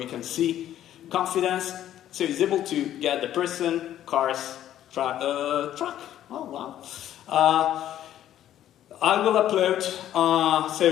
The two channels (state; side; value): quieter; right; 11.8 dB